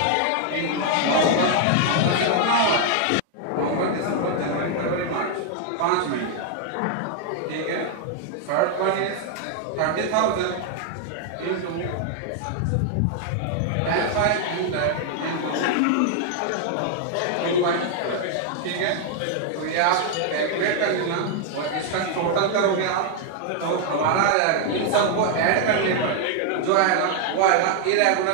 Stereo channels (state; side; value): different; both; correlation 0.00